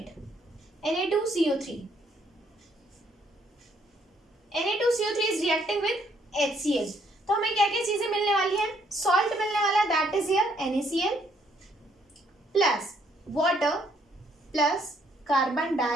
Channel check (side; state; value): both; normal; correlation 0.68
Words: Na2CO3. Na2CO3 is reacting with HCl. तो हमें क्या क्या चीजें मिलने वाली है, सॉल्ट मिलने वाला है, that is here NaCl plus water plus carbon